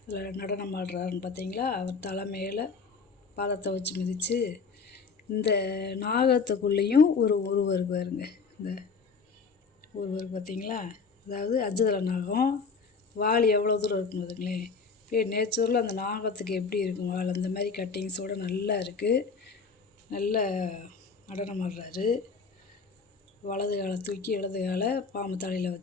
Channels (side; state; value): right; quieter; 4.9 dB